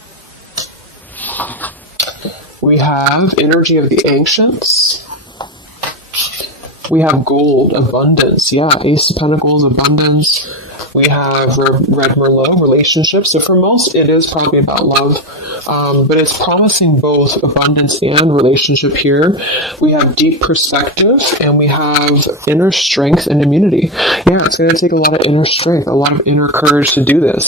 We have energy of the ancients. We have gold, abundance. Yeah, Ace of Pentacles, abundance. We have Red Merlot, relationships. So for most, it is probably about love, but it's promising both abundance and relationship here. We have deep perspective, and we have inner strength and immunity. Yeah, it's going to take a lot of inner strength, a lot of inner courage to do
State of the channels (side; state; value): both; normal; correlation 0.13